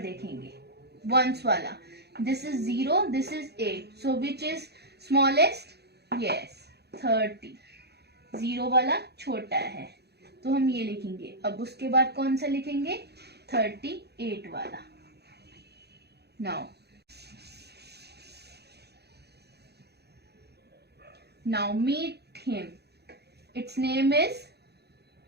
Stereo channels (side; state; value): left; late; 0.48 ms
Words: देखेंगे, वंस वाला. This is 0, this is 8. So which is smallest? Yes, 30. 0 वाला छोटा है तो हम ये लिखेंगे. अब उसके बाद कौन सा लिखेंगे? 38 वाला. Now meet him. It's name is